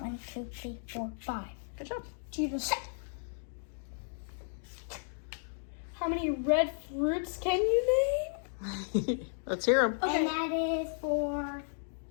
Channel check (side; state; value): right; silent; digital silence